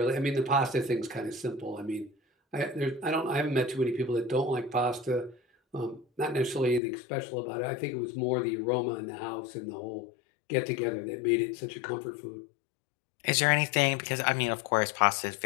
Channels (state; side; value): drops out; right; at 6.8 s